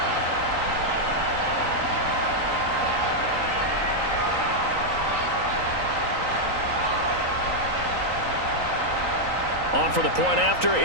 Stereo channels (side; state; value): left; late; 3.9 ms